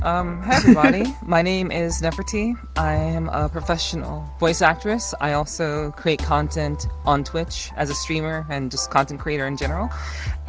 Hi everybody. My name is Neferti. I am a professional voice actress. I also create content on Twitch as a streamer and just content creator in general.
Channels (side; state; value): both; identical; correlation 1.00